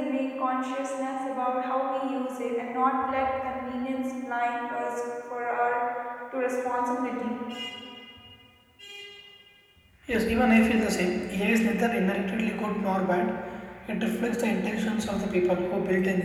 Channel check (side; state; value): both; identical; correlation 1.00